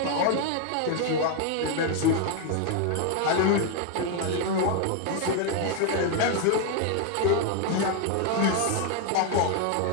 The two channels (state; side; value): different; both; correlation 0.01